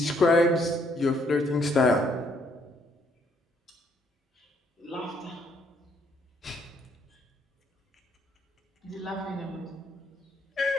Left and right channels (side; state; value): both; normal; correlation 0.69